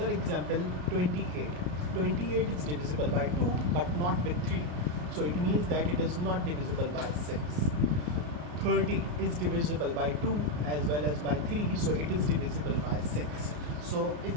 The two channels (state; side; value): late; left; 34 ms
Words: example, 28. 28 is divisible by 2 but not with 3, so it means that it is not divisible by 6. 30 is divisible by 2 as well as by 3, so it is divisible by 6. So